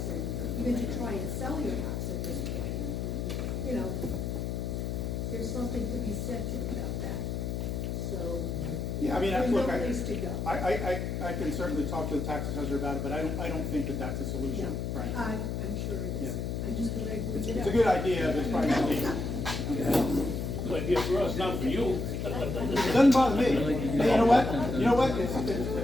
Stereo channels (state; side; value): noise; left; hum, 2 dB below the sound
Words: and even to try and sell your house at this point, there's something to be said about that, so. Yeah, I mean, there's look, no place to go. I can certainly talk to the tax assessor about it, but I don't think that that's a solution, Frank. I'm sure it is, I just thought I'd bring it up. It's a good idea, but it's probably not legal. Good idea for us, not for you. It doesn't bother me. Hey, you know what? It's